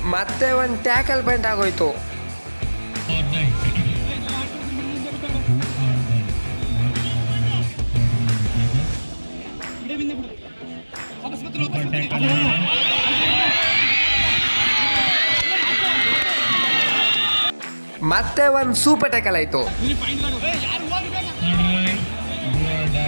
ಮತ್ತೆ ಒಂದು ಟ್ಯಾಕಲ್ ಪಾಯಿಂಟ್ ಆಗೋಯ್ತು. ಮತ್ತೆ ಒಂದು ಸೂಪರ್ ಟ್ಯಾಕಲ್ ಆಯ್ತು.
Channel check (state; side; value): inverted; both; correlation -1.00